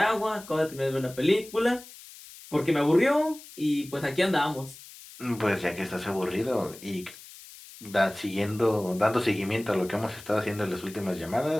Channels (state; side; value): noise; left; hiss, 18 dB below the sound